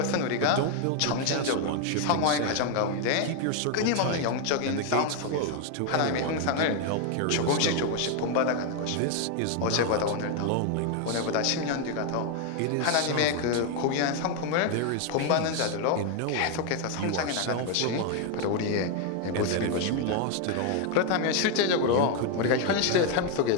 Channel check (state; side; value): different; both; correlation 0.01